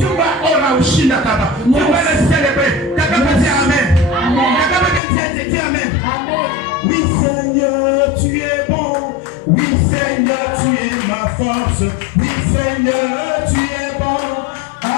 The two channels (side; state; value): right; drops out; at 5.0 s